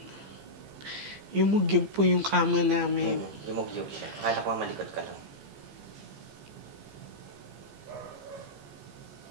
Yumugyog po yung kama namin. Yumugyog siya. Akala ko malikot ka lang.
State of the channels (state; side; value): late; left; 15 ms